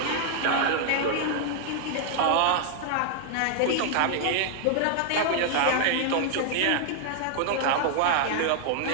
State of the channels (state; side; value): different; both; correlation 0.00